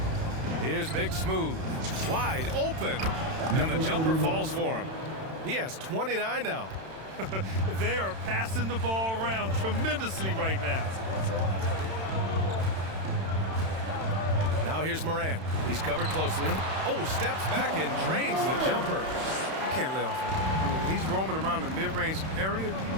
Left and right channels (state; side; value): late; left; 31 ms